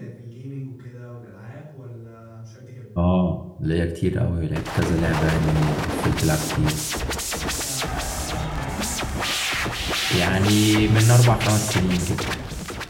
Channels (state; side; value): identical; both; correlation 1.00